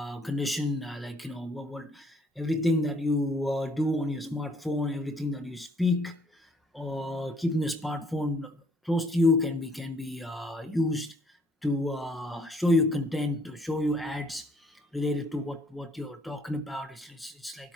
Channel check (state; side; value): normal; both; correlation 0.63